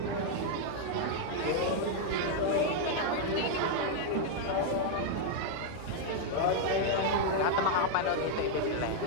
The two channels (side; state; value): both; different; correlation 0.00